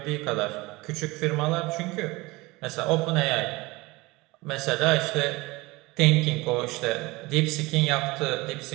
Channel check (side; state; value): left; quieter; 22.4 dB